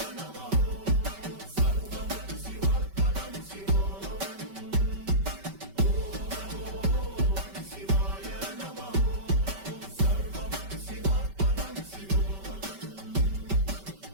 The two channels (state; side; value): late; left; 5.2 ms